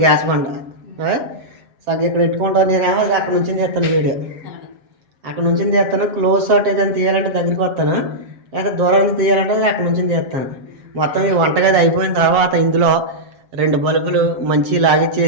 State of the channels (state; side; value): late; left; 7.5 ms